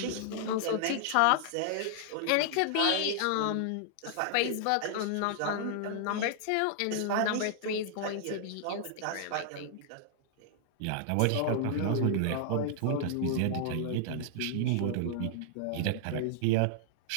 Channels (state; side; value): different; both; correlation -0.01